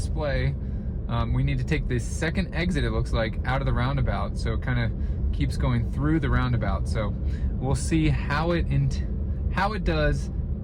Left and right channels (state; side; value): identical; both; correlation 1.00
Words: we need to take the second exit, it looks like, out of the roundabout. So it kind of keeps going through the roundabout. So we'll see how it does